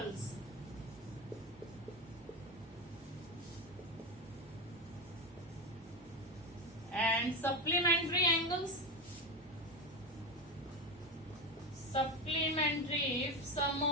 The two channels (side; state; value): both; normal; correlation 0.18